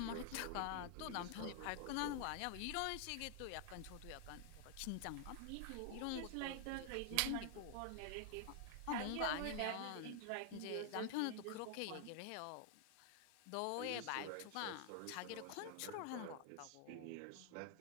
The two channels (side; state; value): both; different; correlation 0.00